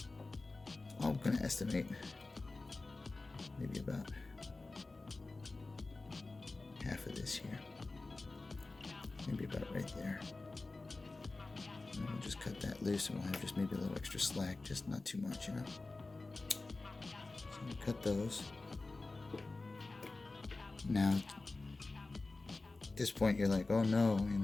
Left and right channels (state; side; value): quieter; right; 3.4 dB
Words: I'm gonna estimate maybe about half of this here. Maybe about right there. And then we'll just cut that loose and we'll have just maybe a little extra slack, just not too much, you know. So we'll cut those. Now, at this point you're like, oh no, you